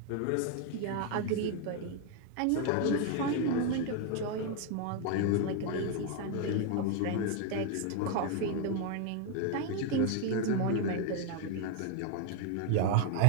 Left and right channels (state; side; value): different; both; correlation 0.01